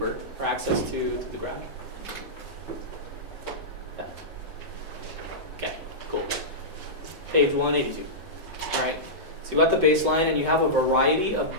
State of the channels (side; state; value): both; normal; correlation -0.14